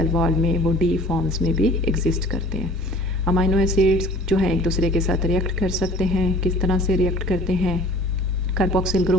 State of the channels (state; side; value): normal; both; correlation 0.47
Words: वॉल में वो डी फॉर्म्स में भी एग्जिस्ट करते हैं। अमाइनो एसिड्स जो है एक दूसरे के साथ रिएक्ट कर सकते हैं। किस तरह से रिएक्ट करते हैं? Carboxyl